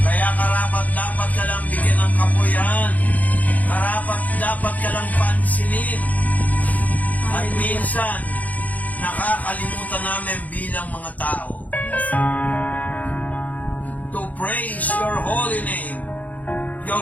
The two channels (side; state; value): right; late; 0.077 ms